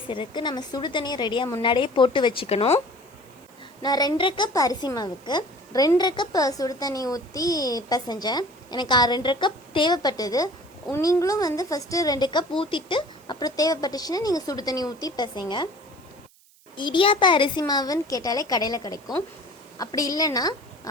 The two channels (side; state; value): right; noise; hiss, 29 dB below the sound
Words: நம்ம சுடு தண்ணியை ரெடியாக முன்னாடியே போட்டு வச்சுக்கணும். நான் 2.5 கப் அரிசி மாவுக்கு 2.5 கப் சுடு தண்ணி ஊற்றி பிசைஞ்சேன். எனக்கு 2.5 கப் தேவைப்பட்டது. நீங்களும் ஃபஸ்ட்டு 2 கப் ஊற்றிட்டு அப்புறம் தேவைப்பட்டுச்சுன்னா நீங்கள் சுடு தண்ணி ஊற்றி பிசைங்க. இடியாப்ப அரிசி மாவுன்னு கேட்டாலே கடையில் கிடைக்கும். அப்படி இல்லைன்னா